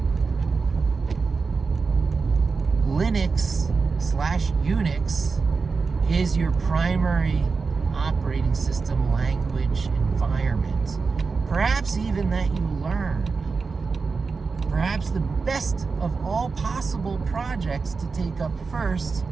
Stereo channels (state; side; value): quieter; left; 4.6 dB